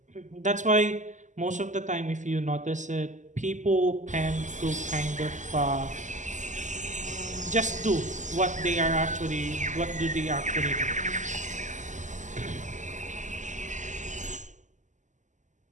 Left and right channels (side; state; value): left; late; 0.36 ms